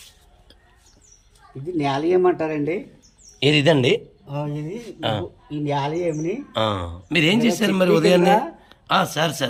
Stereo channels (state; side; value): identical; both; correlation 1.00